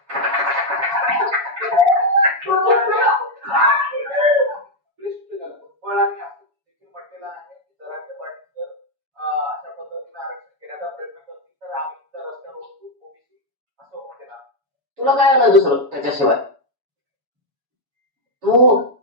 म्हटलेलं आहे की जरांगे पाटील जर अशा पद्धतीने आरक्षण घेण्याचा प्रयत्न करतील तर आम्ही सुद्धा रस्त्यावर उतरू, ओबीसी असं म्हटलेलं. तुला काय आलं दुसरं त्याच्याशिवाय? तू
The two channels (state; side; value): late; left; 7.1 ms